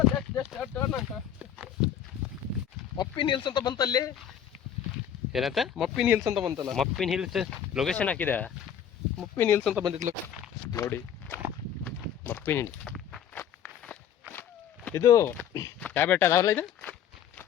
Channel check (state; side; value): quieter; right; 9.1 dB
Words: ಮಪ್ಪಿನ ಹಿಲ್ಸ್ ಅಂತ ಬಂತಲ್ಲಿ ಏನಂತ ಮಪ್ಪಿನ ಹಿಲ್ಸ್ ಅಂತ ಬಂತಲ್ಲ ಮಪ್ಪಿನ ಹಿಲ್ಸ್ ಲೊಕೇಶನ್ ಹಾಕಿದೆ ಮಪ್ಪಿನ ಹಿಲ್ಸ್ ಅಂತ ಬಂದಿದ್ಲು ನೋಡಿ ಮಪ್ಪಿನ ಹಿಲ್ಸ್ ಇದು ಯಾವ ಬೆಟ್ಟ ಅದಾವಲ್ಲ ಇದು